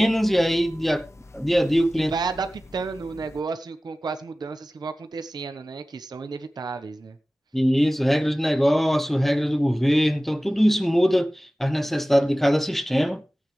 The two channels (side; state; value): both; normal; correlation 0.97